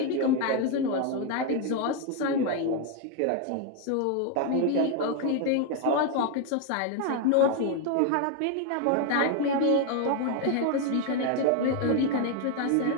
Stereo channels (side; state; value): both; different; correlation 0.01